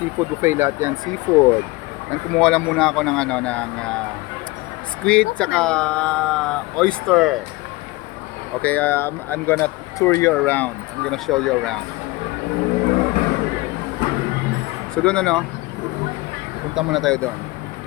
buffet lahat yan, seafood. Yan, kumuha lang muna ako ng squid tsaka oyster. Okay, I'm gonna tour you around. I'm gonna show you around. So doon punta muna tayo doon.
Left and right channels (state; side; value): quieter; right; 21.9 dB